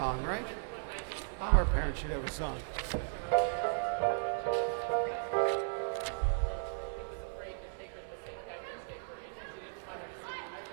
right? All our parents should have a song.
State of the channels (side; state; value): left; silent; digital silence